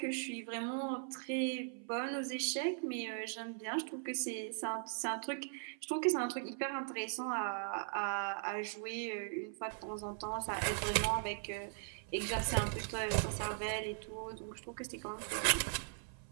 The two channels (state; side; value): silent; left; 51 dB below the other